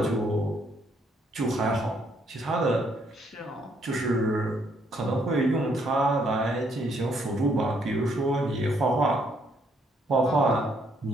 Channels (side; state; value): both; normal; correlation 0.70